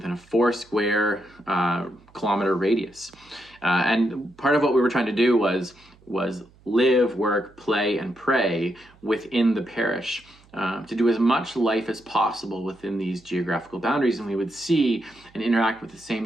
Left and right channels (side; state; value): right; noise; hum, 28 dB below the sound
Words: a 4 square kilometer radius. And part of what we were trying to do was live, work, play, and pray within the parish, to do as much life as possible within these geographical boundaries. And we would see and interact with the